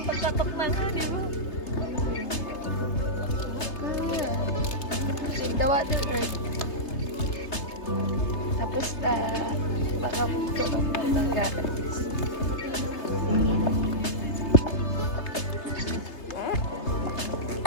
na nga, di ba? The Water Earth. Tapos na, baka ito ang matanggaan.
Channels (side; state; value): right; late; 3.3 ms